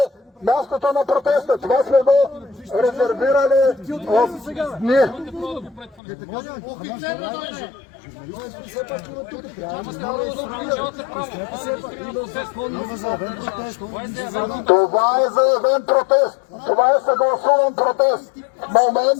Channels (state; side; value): drops out; right; at 6.0 s